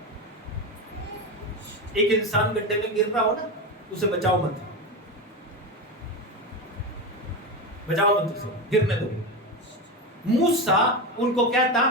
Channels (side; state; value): both; normal; correlation 0.18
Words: एक इंसान गड्ढे में गिर रहा हो ना, उसे बचाओ मत, बचाओ मत, उसे गिरने दो। मूसा उनको